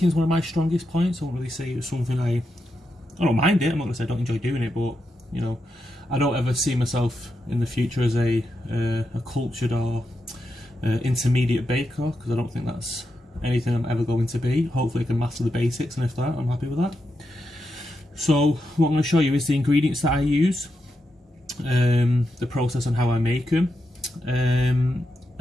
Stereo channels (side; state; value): both; normal; correlation 0.85